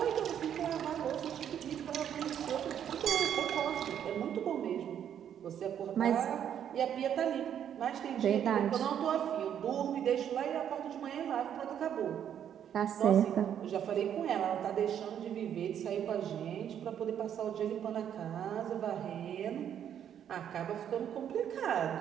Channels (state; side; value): quieter; left; 9.4 dB